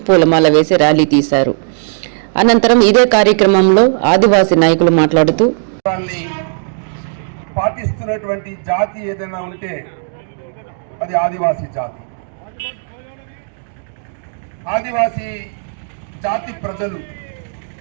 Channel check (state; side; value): silent; left; digital silence